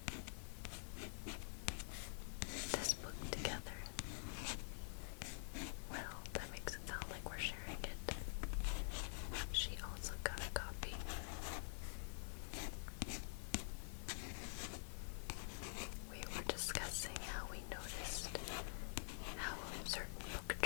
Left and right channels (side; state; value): right; silent; digital silence